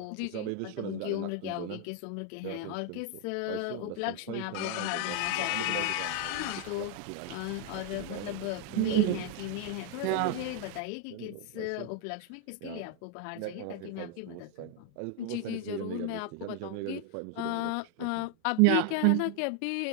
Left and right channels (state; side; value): different; both; correlation 0.01